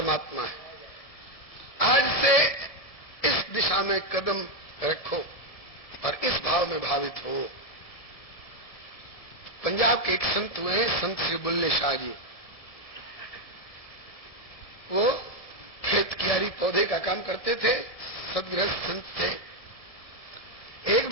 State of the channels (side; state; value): right; late; 1.7 ms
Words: है। आज से इस दिशा में कदम रखो और इस भाव में भावित हो। पंजाब के एक संत हुए हैं, संत श्री बुल्ले शाह जी। वो खेत कियारी पौधे का काम करते थे, सदगृहस्थ संत थे। एक